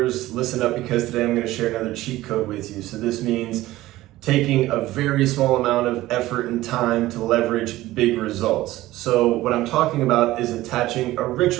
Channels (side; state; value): left; quieter; 16.6 dB